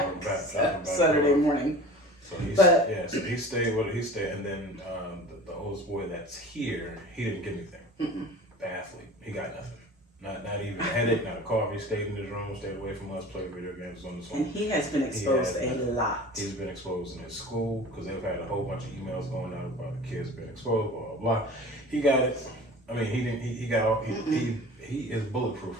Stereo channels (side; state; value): both; normal; correlation 0.40